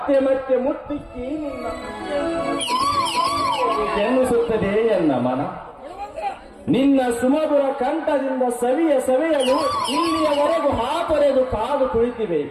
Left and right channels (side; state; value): both; identical; correlation 1.00